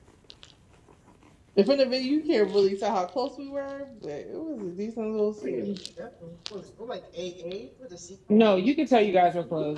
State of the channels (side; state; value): both; identical; correlation 1.00